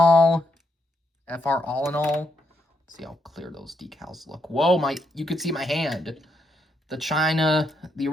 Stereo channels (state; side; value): normal; both; correlation 0.78